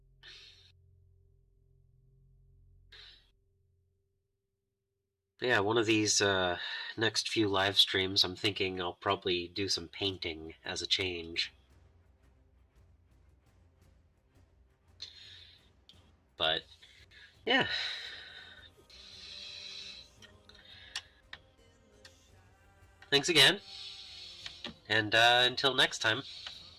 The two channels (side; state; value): both; identical; correlation 1.00